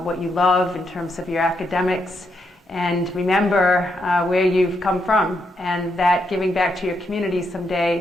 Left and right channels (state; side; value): normal; both; correlation 0.80